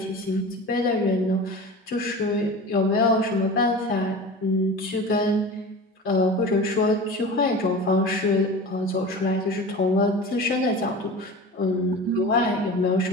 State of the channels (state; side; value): normal; both; correlation 0.34